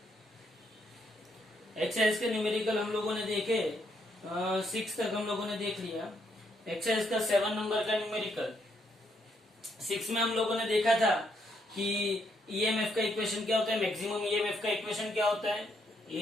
एक्सरसाइज के न्यूमेरिकल हम लोगों ने देखे, 6 तक हम लोगों ने देख लिया। एक्सरसाइज का 7 नंबर का न्यूमेरिकल 6 में हम लोगों ने देखा था कि ईएमएफ का इक्वेशन क्या होता है, मैक्सिमम ईएमएफ का इक्वेशन क्या होता है।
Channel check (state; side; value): normal; both; correlation 0.75